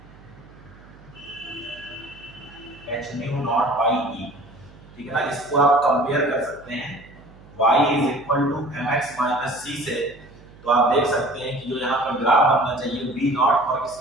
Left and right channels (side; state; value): right; noise; hum, 22 dB below the sound